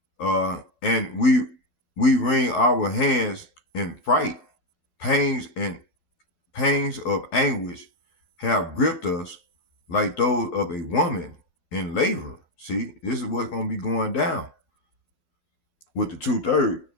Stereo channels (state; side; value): late; right; 12 ms